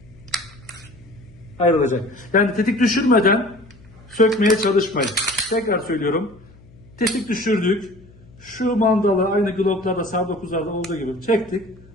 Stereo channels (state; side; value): noise; left; hum, 24 dB below the sound